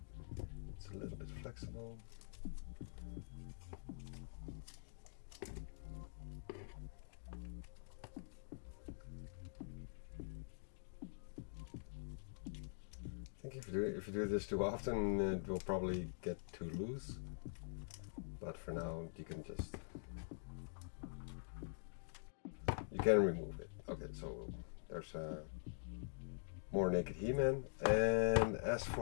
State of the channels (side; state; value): right; silent; digital silence